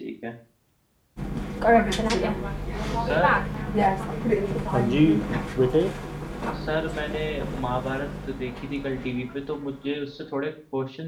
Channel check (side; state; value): both; identical; correlation 1.00